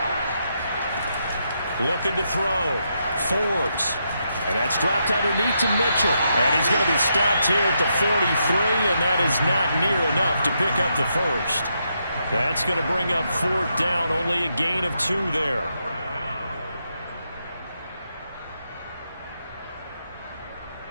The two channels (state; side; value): inverted; both; correlation -0.81